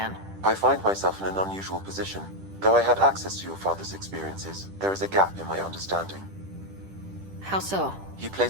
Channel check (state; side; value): late; left; 10 ms